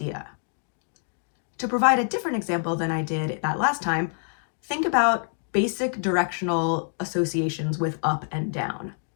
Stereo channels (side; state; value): right; silent; digital silence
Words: To provide a different example than I did that last time, think about basic directional associations with up and down.